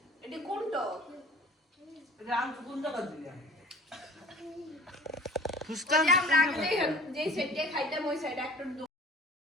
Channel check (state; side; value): normal; both; correlation 0.45